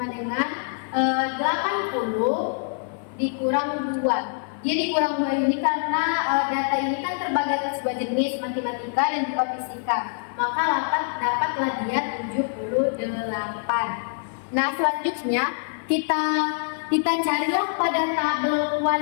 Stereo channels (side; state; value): right; silent; 60 dB below the other